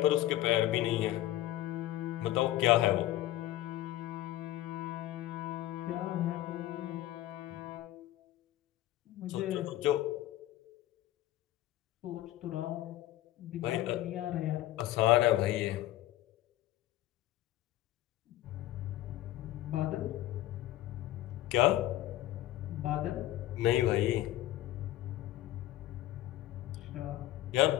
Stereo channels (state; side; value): quieter; right; 14.6 dB